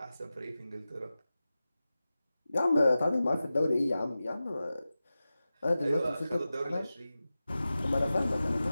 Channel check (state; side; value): inverted; both; correlation -0.95